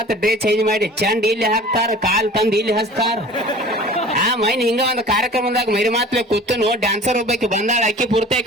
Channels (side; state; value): both; normal; correlation 0.43